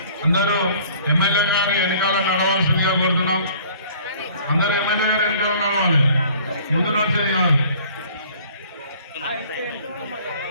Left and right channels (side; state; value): both; inverted; correlation -0.53